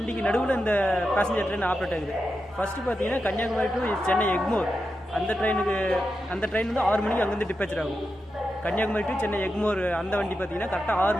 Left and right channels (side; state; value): both; normal; correlation 0.89